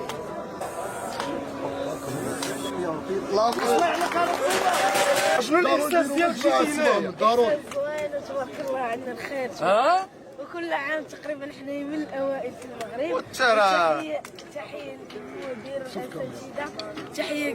شنو الاحساس ديالك جيتي هنايا؟ ضروري. زوينه تبارك الله عندنا الخير. وكل عام تقريبا احنا من الاوائل في المغرب. والترى. تحيه للمدير والاساتذه، تحيه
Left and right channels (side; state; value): both; identical; correlation 1.00